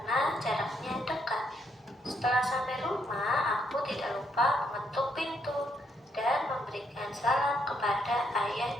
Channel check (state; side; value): normal; both; correlation 0.74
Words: jaraknya dekat. Setelah sampai rumah, aku tidak lupa mengetuk pintu dan memberikan salam kepada ayah